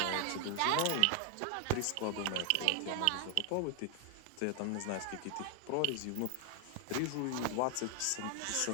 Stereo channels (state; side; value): different; both; correlation 0.00